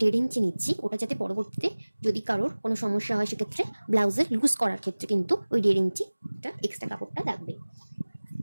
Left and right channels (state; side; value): inverted; both; correlation -1.00